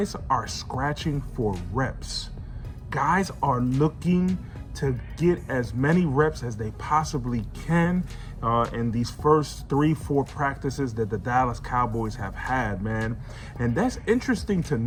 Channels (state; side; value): identical; both; correlation 1.00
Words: are scratching for reps. Guys are looking to get as many reps as they possibly can in these first 3-4 practices that the Dallas Cowboys have had, man. And that's interesting to